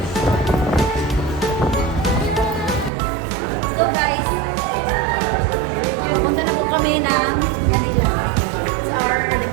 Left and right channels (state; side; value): drops out; left; at 2.9 s